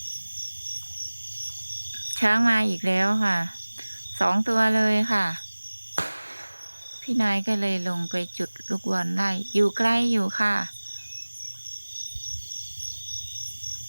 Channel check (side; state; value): both; inverted; correlation -1.00